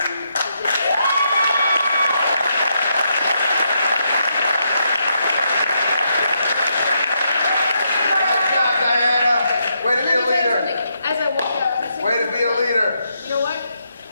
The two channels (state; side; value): inverted; both; correlation -0.79